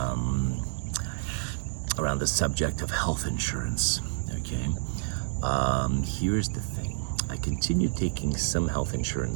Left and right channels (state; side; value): silent; left; digital silence